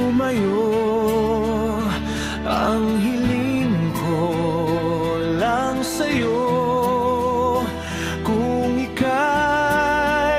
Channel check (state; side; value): identical; both; correlation 1.00